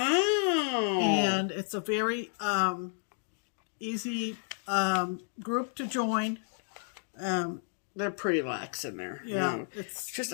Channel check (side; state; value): right; silent; 57 dB below the other